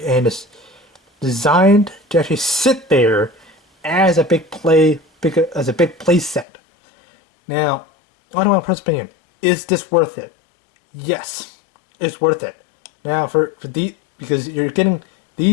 and it's designed to actually sit there as a big play set. Now, on my personal opinion, is this worth it? Yes, it's worth it. Now because you're getting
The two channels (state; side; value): drops out; right; at 6.5 s